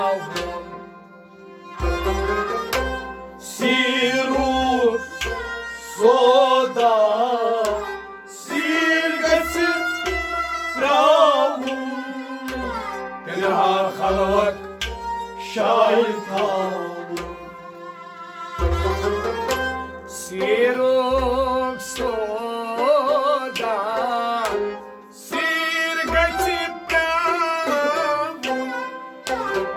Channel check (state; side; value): identical; both; correlation 1.00